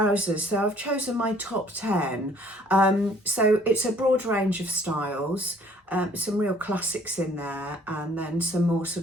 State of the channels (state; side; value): normal; both; correlation 0.58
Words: So I've chosen my top 10. So it's a broad range of styles, some real classics in there, and then some more sort